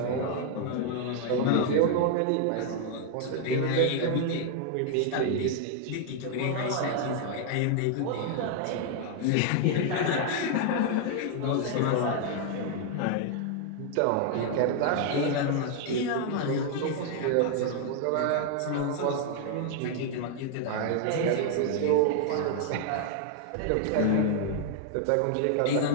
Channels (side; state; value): both; different; correlation 0.00